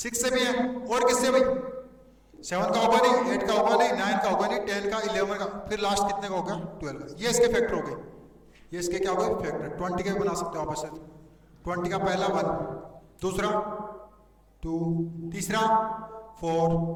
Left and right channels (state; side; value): identical; both; correlation 1.00